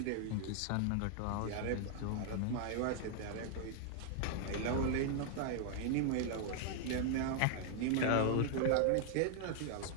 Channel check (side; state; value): both; different; correlation 0.00